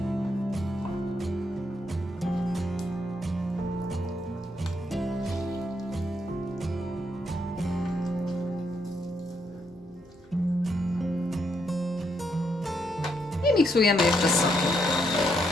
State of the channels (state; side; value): normal; both; correlation 0.76